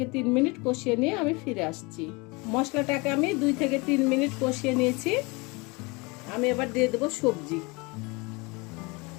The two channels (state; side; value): quieter; right; 26.9 dB